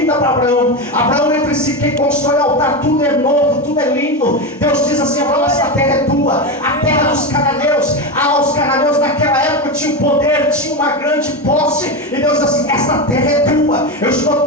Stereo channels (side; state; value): both; normal; correlation 0.16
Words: para Abraão. Abraão entre si, quem constrói altar, tudo é novo, tudo é lindo. Deus diz assim: Abraão, essa terra é tua. A terra dos cananeus. Os cananeus naquela época tinham poder, tinham uma grande posse. E Deus diz assim: esta terra é tua. Eu estou